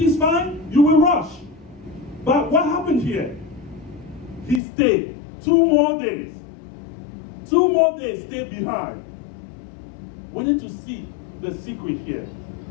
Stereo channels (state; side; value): drops out; right; at 4.6 s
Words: fine, you will rush. But what happened here? He stayed 2 more days. 2 more days stayed behind. We need to see the secret here.